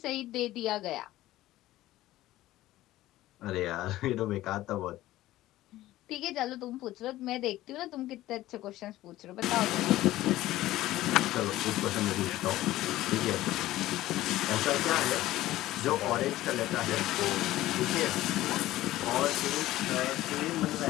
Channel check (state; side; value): quieter; right; 15.7 dB